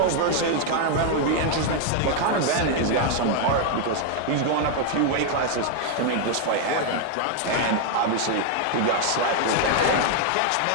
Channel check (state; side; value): different; both; correlation 0.00